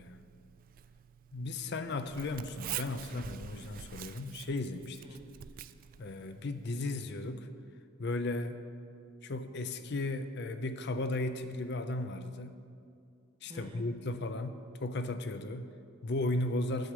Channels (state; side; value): normal; both; correlation 0.49